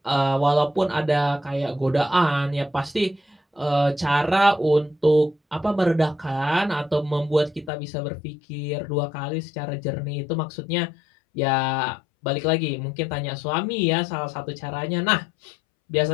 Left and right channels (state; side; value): drops out; right; at 7.7 s